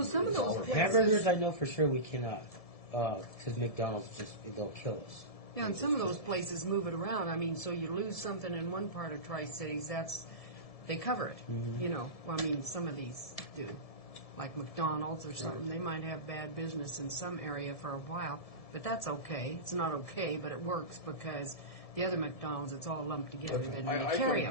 some of those places... Hamburgers, I know for sure we cannot, because McDonald's they'll kill us. Yeah, and some of those places move it around. I mean, so you lose something in one part of Tri-Cities, they cover it. Mm-hmm. You know, well, I mean, some of these do. Like McDonald's or something, they might have bad business in some area for a while, but that's okay. It's not okay, but it works because the other McDonald's, it's all lumped together. Then they carry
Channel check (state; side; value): late; right; 1.7 ms